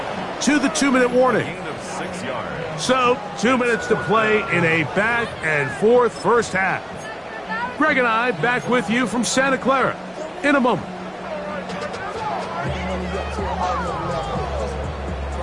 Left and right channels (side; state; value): both; identical; correlation 1.00